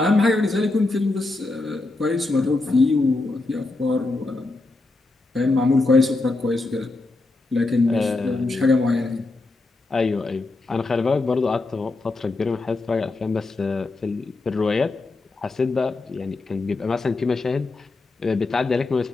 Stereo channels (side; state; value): right; quieter; 3.2 dB